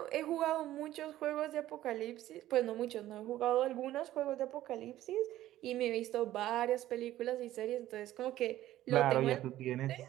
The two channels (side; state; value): left; quieter; 14.1 dB